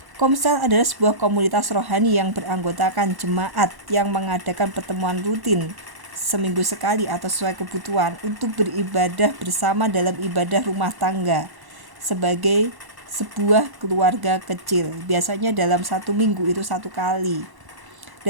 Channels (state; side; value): late; left; 1.1 ms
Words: Komsel adalah sebuah komunitas rohani yang beranggotakan jemaat yang mengadakan pertemuan rutin seminggu sekali atau sesuai kebutuhan untuk beribadah bersama dalam ibadah rumah tangga sebagai sebuah keluarga kecil. Biasanya dalam 1 minggu itu 1 kali.